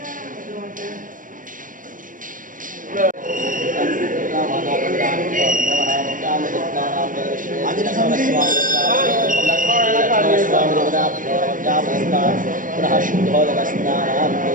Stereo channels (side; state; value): left; late; 0.39 ms